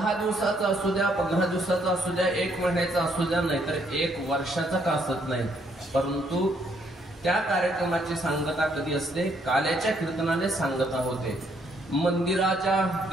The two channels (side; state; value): both; normal; correlation 0.70